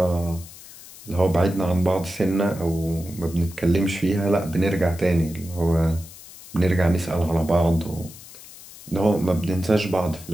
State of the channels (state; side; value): noise; left; hiss, 18 dB below the sound